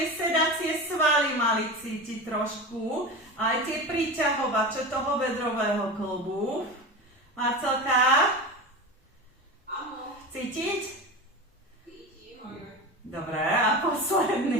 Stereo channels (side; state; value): both; normal; correlation 0.27